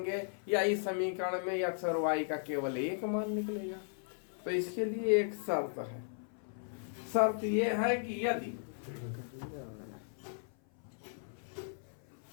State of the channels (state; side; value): silent; right; 54 dB below the other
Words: या इस समीकरण में x और y का केवल एक मान निकलेगा। तो इसके लिए एक शर्त है। शर्त यह है कि यदि